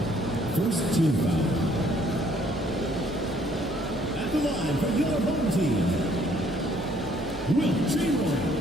First team foul. At the line for your home team, Will Chamberlain.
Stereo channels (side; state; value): both; normal; correlation 0.63